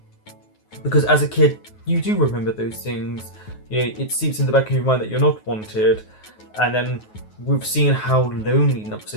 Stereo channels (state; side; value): late; right; 9.4 ms